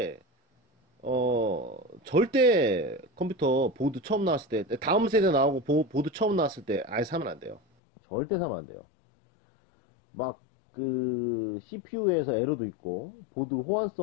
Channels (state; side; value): drops out; right; at 7.6 s